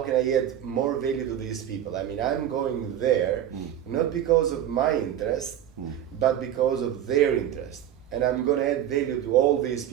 can I add more value to these people? I'm going there not because of my interest, but because of their interest. And I'm going to add value to all these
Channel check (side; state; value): left; quieter; 10.8 dB